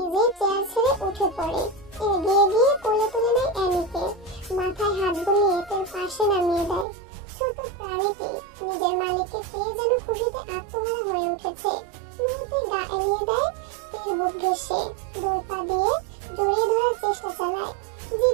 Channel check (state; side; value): drops out; left; at 6.9 s